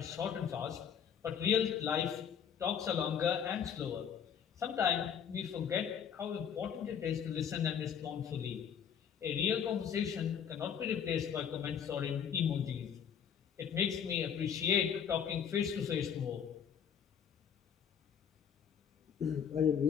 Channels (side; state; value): right; quieter; 8.0 dB